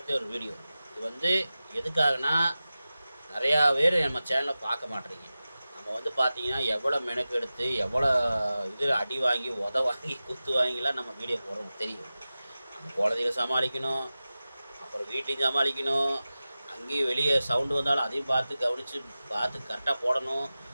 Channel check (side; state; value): both; inverted; correlation -0.95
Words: ஒரு வீடியோ. இது வந்து எதுக்காகனா, நிறையா பேர் நம்ம சேனலை பார்க்க மாட்டேறீங்க. நம்ம வந்து பார்த்தீங்கன்னா எவ்வளோ மெனக்கெடுத்து எவ்வளோ இது அடி வாங்கி வாங்கி குத்து வாங்கிலாம் நம்ம வீடியோ போடுறோம் தெரியும். நம்ம குழந்தைகளை சமாளிக்கணும், அப்புறம் வீட்டையும் சமாளிக்கணும், அங்கேயும் வெளியே சவுண்டு வந்தாலும் அதையும் பார்த்து கரெக்டாக போடணும்.